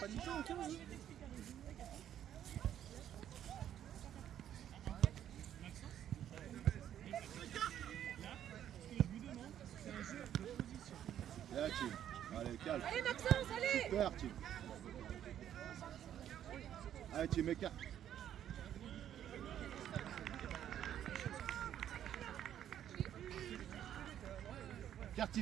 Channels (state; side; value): quieter; left; 10.5 dB